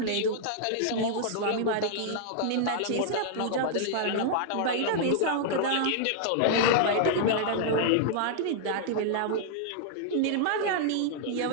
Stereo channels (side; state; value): both; different; correlation -0.01